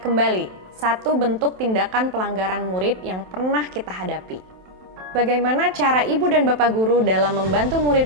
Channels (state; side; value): late; left; 27 ms